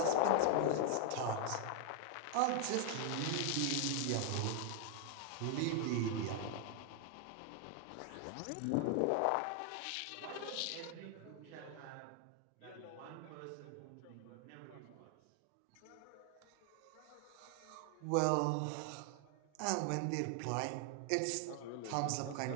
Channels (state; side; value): different; both; correlation 0.00